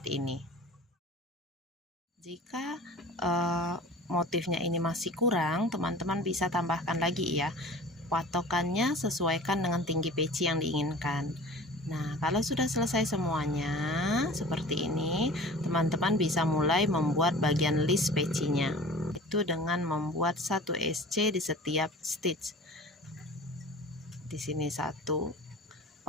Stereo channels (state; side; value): normal; both; correlation 0.41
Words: ini. Jika motifnya ini masih kurang, teman-teman bisa tambahkan lagi ya. Patokannya sesuaikan dengan tinggi peci yang diinginkan. Nah, kalau sudah selesai semuanya seperti ini, teman-teman bisa mulai membuat bagian list pecinya. Itu dengan membuat 1 SC di setiap stitch. Di sini 1,